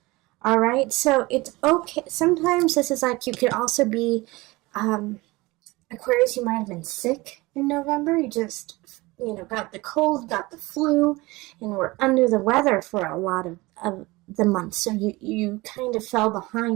All right, so it's okay. Sometimes this is like you could also be Aquarius. You might have been sick in November. You just, got the cold, got the flu, and were under the weather for a lot of the month. So you kind of fell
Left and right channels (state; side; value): quieter; left; 21.9 dB